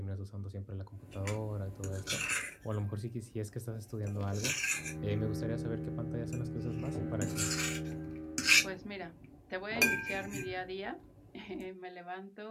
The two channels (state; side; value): identical; both; correlation 1.00